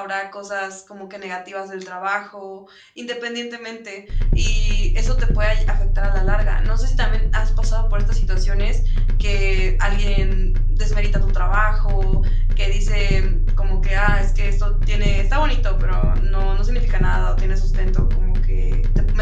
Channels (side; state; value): both; identical; correlation 1.00